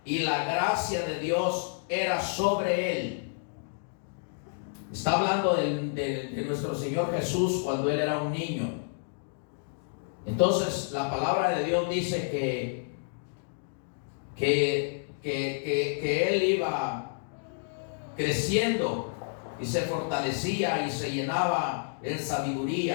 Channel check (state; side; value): silent; right; digital silence